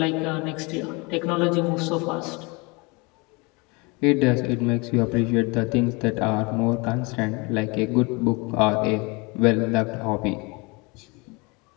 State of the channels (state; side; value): quieter; right; 27.9 dB